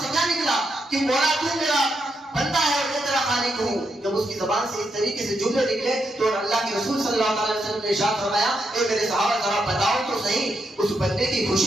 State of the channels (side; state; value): both; normal; correlation 0.82